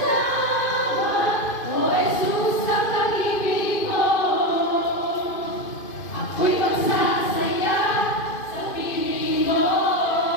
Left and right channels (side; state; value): right; late; 2.5 ms